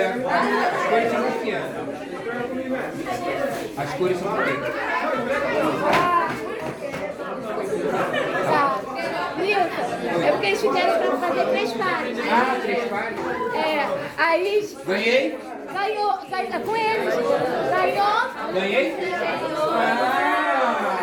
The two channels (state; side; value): identical; both; correlation 1.00